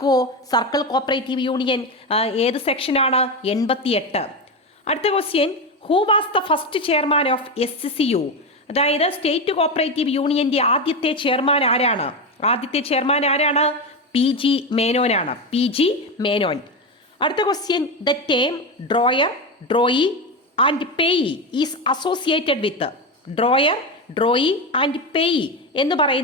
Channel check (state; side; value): normal; both; correlation 0.16